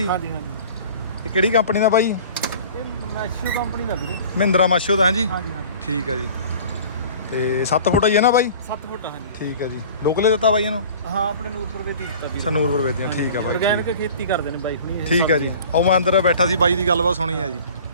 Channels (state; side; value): inverted; both; correlation -0.44